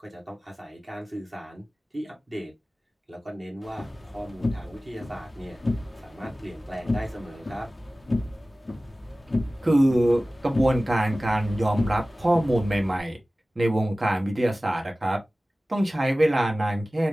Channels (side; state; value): both; normal; correlation 0.97